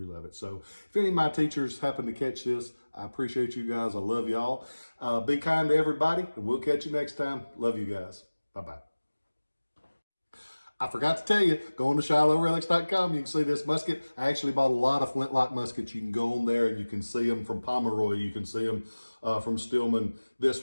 love it. So if any of my teachers happen to catch this, I appreciate you guys. I love y'all. Be kind to everybody, and we'll catch you next time. Love you guys. Bye-bye. I forgot to tell you, go on to ShilohRelics.com. You can see this musket. I actually bought a lot of Flintlock muskets. You can go on there and you can see them from Pomeroy. You can see them from Stillman. This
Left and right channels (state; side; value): inverted; both; correlation -1.00